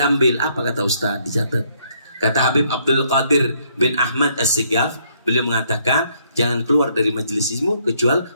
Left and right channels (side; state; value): both; inverted; correlation -0.69